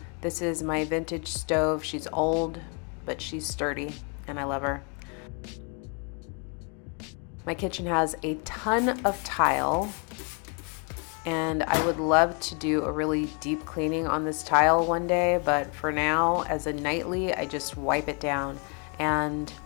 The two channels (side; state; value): right; quieter; 36.1 dB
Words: This is my vintage stove. She's old, but she's sturdy, and I love her. My kitchen has a ton of tile, and I would love to do a really deep cleaning on this tile one day, but for now, as a nightly, I just wipe it down. And